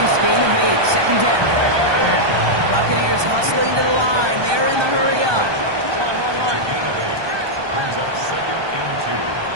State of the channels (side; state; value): left; late; 1.2 ms